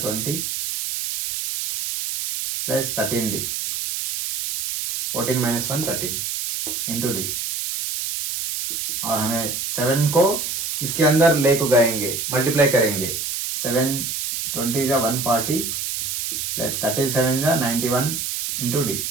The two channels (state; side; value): noise; right; hiss, 2 dB below the sound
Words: 20 plus 13d 14 minus 1 13 into D और हमें 7 को इसके अंदर ले को गएंगे, मल्टीप्लाई करेंगे। 7 20 जा 140 प्लस 37 जा 91 इंटू डी